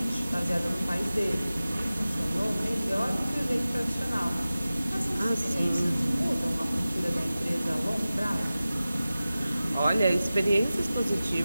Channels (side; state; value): both; inverted; correlation -0.96